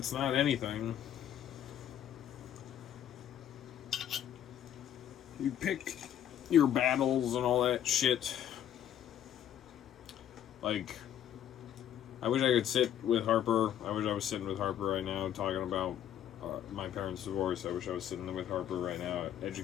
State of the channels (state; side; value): quieter; right; 10.4 dB